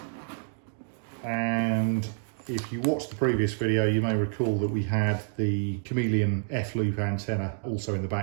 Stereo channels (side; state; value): left; silent; digital silence